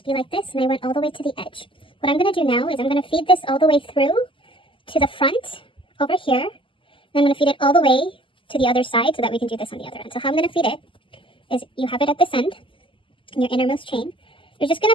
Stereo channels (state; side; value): late; right; 0.25 ms